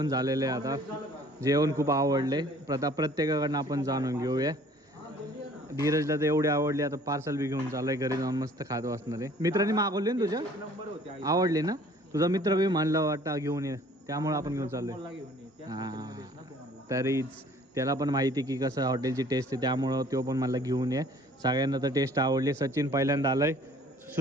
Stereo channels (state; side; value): normal; both; correlation 0.53